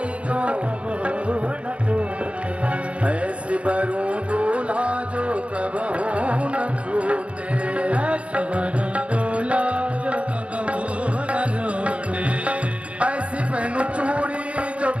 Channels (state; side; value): late; left; 0.062 ms